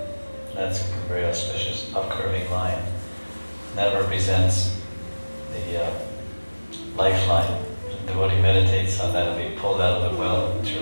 That's a very auspicious upcurving line. And that represents the lifeline. The devotee meditates on that and be pulled out of the well of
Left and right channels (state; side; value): inverted; both; correlation -1.00